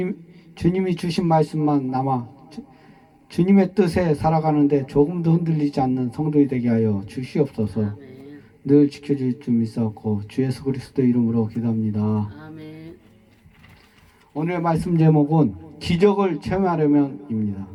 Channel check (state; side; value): identical; both; correlation 1.00